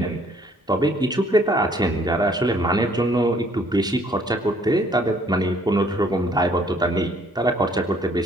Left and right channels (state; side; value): normal; both; correlation 0.62